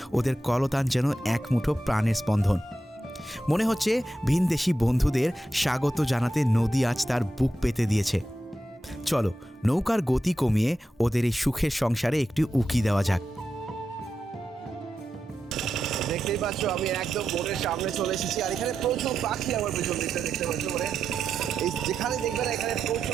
ওদের কলতান যেন এক মুঠো প্রাণের স্পন্দন। মনে হচ্ছে ভিনদেশি বন্ধুদের স্বাগত জানাতে নদী আজ তার বুক পেতে দিয়েছে। চলো নৌকার গতি কমিয়ে ওদের এই সুখের সংসারে একটু উকি দেওয়া যাক। দেখতেই পাচ্ছ আমি একদম বোটের সামনে চলে এসেছি। আর এখানে প্রচুর পাখি আমার পেছন দিকটা দেখতে পাচ্ছ। মানে এই যেখানে দেখবে না এখানে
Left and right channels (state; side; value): normal; both; correlation 0.88